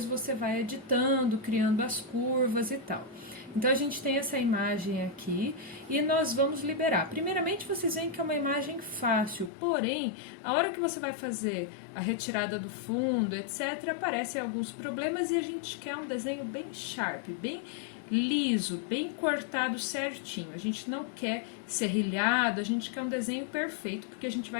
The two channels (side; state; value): right; drops out; at 9.5 s